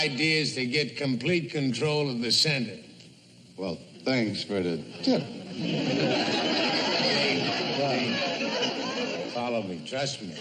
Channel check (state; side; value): identical; both; correlation 1.00